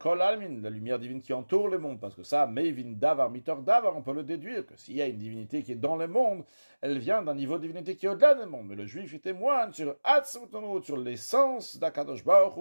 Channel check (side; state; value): both; inverted; correlation -1.00